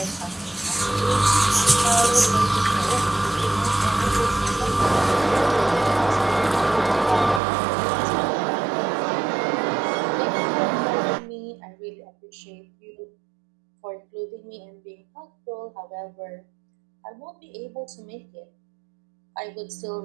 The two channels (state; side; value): drops out; left; at 7.4 s